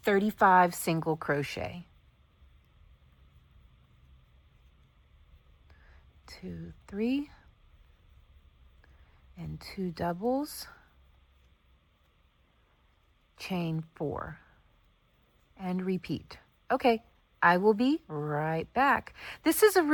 single crochet. 2, 3, and 2 doubles, chain 4, and repeat. Okay, I will be right back. This is a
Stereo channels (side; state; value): both; identical; correlation 1.00